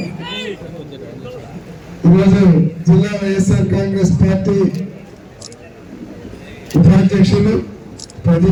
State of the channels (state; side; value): identical; both; correlation 1.00